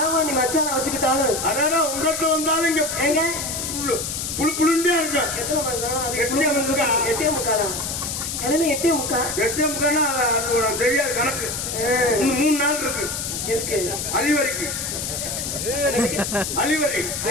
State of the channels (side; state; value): left; noise; hiss, 4 dB below the sound